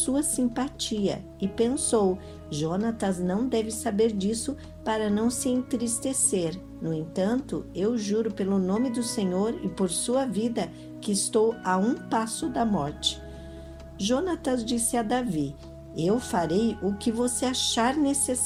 simpatia. E pensou: Jonatas não deve saber disso para não se entristecer. No entanto, eu juro pelo nome do Senhor e por sua vida que estou a um passo da morte. Jonatas disse a Davi: eu farei o que você achar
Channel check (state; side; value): identical; both; correlation 1.00